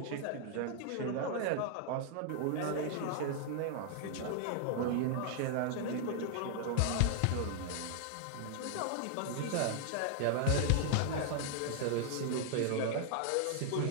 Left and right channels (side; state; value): both; different; correlation -0.01